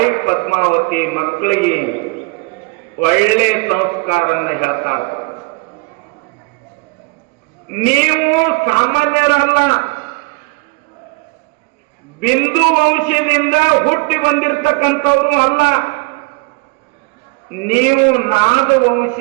ಪದ್ಮಾವತಿ ಮಕ್ಕಳಿಗೆ ಒಳ್ಳೆ ಸಂಸ್ಕಾರನ್ನ ಹೇಳ್ತಾರ. ನೀವು ಸಾಮಾನ್ಯರಲ್ಲ, ಬಿಂದು ವಂಶದಿಂದ ಹುಟ್ಟಿ ಬಂದಿರತಕ್ಕಂಥವ್ರು ಅಲ್ಲ, ನೀವು ನಾದ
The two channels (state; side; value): quieter; left; 28.0 dB